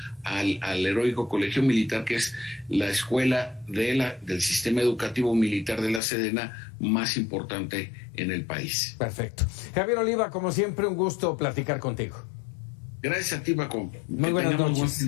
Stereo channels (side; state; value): right; drops out; at 6.0 s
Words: al heroico colegio militar, que es la escuela del sistema educativo militar de la Sedena más importante en el país. Perfecto. Javier Oliva, como siempre, un gusto platicar contigo. Gracias a ti, Paco. Muy buenas noches. Buen fin